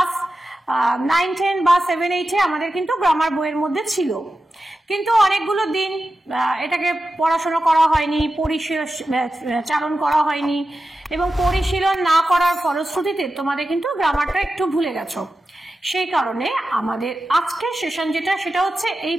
9, 10 বা 7, 8 আমাদের কিন্তু গ্রামার বইয়ের মধ্যে ছিল। কিন্তু অনেকগুলো দিন এটাকে পড়াশোনা করা হয়নি, চালন করা হয়নি, এবং পরিশীলন না করার ফলশ্রুতিতে তোমাদের কিন্তু গ্রামারটা একটু ভুলে গেছো। সেই কারণে আমাদের আজকের সেশন সেটা হচ্ছে এই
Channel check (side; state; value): both; normal; correlation 0.92